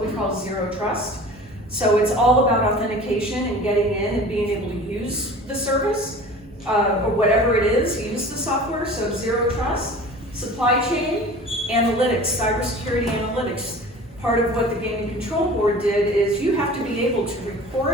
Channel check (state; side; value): normal; both; correlation 0.41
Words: we call zero trust. So it's all about authentication and getting in and being able to use the service, or whatever it is, use the software, so zero trust. Supply chain, analytics, cybersecurity analytics. Part of what the Gaming Control Board did is you have to be able to